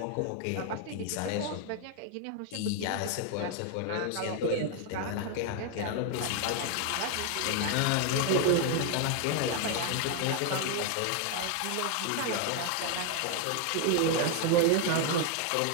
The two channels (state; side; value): different; both; correlation 0.00